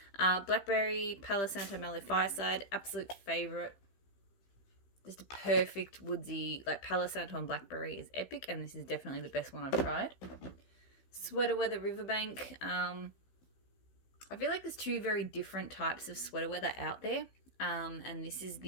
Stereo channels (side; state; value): right; late; 16 ms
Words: Blackberry, Palo Santo, Mallow Fireside. Absolute favourite. Just a perfect woodsy, like Palo Santo and Blackberry is epic, and this is definitely the best one I've tried. Sweater Weather Riverbank. I feel like there's 2 very different types of sweater weather out there, and this is